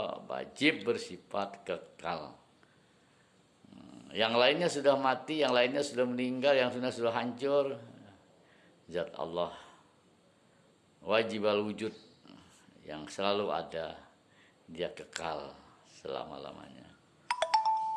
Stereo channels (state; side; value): identical; both; correlation 1.00